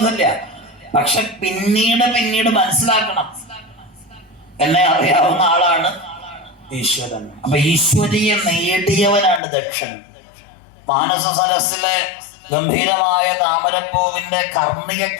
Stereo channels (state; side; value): drops out; right; at 9.4 s